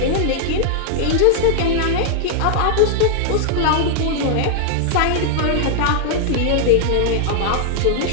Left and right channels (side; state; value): both; different; correlation 0.00